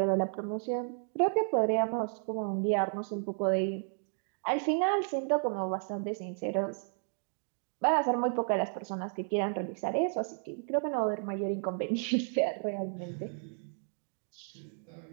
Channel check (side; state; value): left; silent; 56 dB below the other